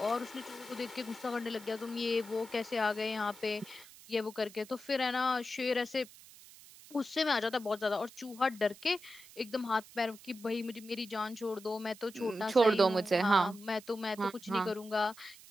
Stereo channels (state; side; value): noise; right; hiss, 20 dB below the sound